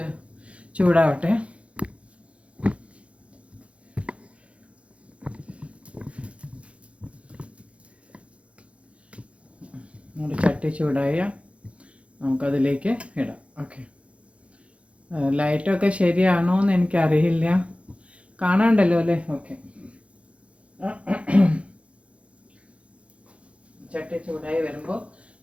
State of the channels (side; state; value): left; late; 0.062 ms